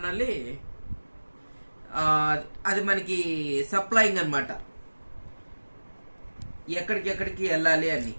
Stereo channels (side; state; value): both; inverted; correlation -1.00